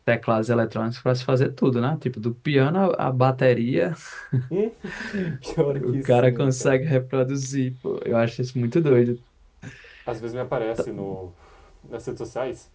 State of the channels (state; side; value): identical; both; correlation 1.00